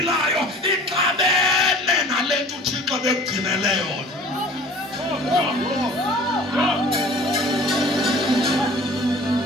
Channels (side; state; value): both; normal; correlation 0.45